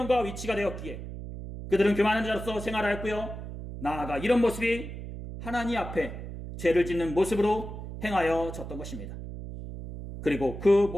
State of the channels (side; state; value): right; noise; hum, 9 dB below the sound